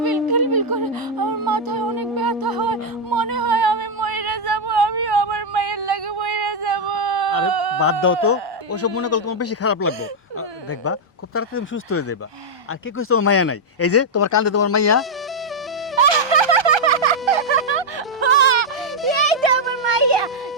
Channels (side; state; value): both; normal; correlation -0.02